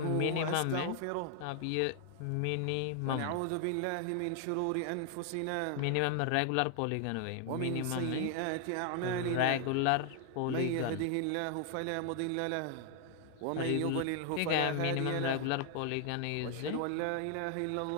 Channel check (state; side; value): different; both; correlation 0.00